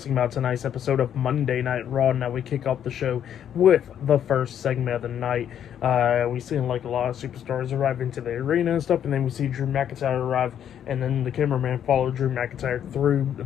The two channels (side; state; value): right; quieter; 9.5 dB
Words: about tonight's episode of Monday Night Raw. Now we kick off the show with the first segment of the night. We see like a lot of superstars arrive into the arena and stuff, and then we see Drew McIntyre arrive, and then the cameraman followed Drew McIntyre through the